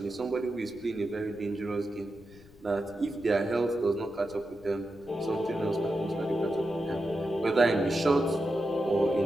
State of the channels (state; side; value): noise; left; rumble, 24 dB below the sound